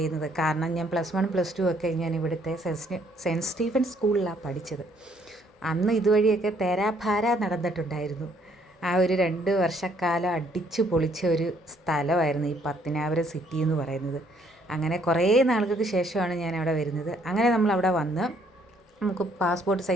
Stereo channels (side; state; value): both; normal; correlation 0.66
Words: കാരണം ഞാൻ +1 +2 ഒക്കെ ഞാൻ ഇവിടുത്തെ സെൻറ്റ് സ്റ്റീഫൻ സ്കൂളിലാണ് പഠിച്ചത്. അന്ന് ഇതുവഴിയൊക്കെ തേരാഭാര നടന്നിട്ടുണ്ടായിരുന്നു. ആ ഒരു 2 വർഷക്കാലം അടിച്ചു പൊളിച്ച ഒരു സ്ഥലമായിരുന്നു ഈ പത്തനാപുരം സിറ്റി എന്ന് പറയുന്നത്. അങ്ങനെ കുറേ നാളുകൾക്ക് ശേഷമാണ് ഞാൻ അവിടെ വരുന്നത്. അങ്ങനെ നമ്മൾ അവിടെ വന്ന് നമുക്ക് പാസ്പോർട്ട്